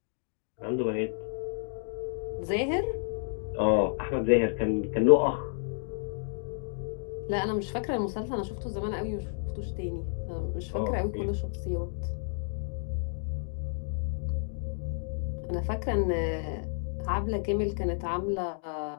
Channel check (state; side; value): silent; right; digital silence